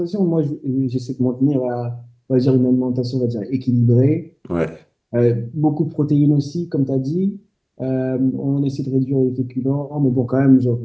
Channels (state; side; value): identical; both; correlation 1.00